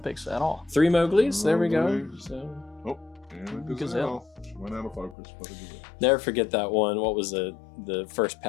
at all. 3 Mowglis. There we go. Mowglis. So And Gazelle. She went out of focus, but a gazelle. never forget that one. What was it? The first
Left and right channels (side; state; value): right; drops out; at 5.2 s